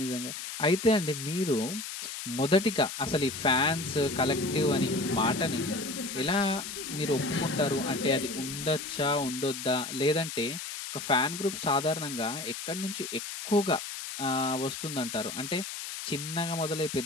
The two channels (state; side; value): noise; left; hiss, 7 dB below the sound